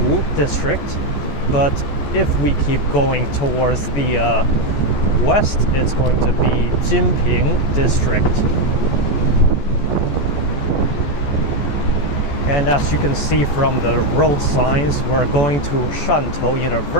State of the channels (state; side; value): late; right; 14 ms